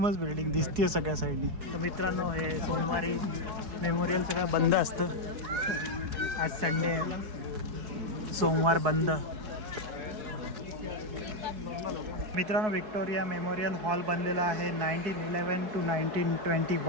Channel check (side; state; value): left; late; 4.7 ms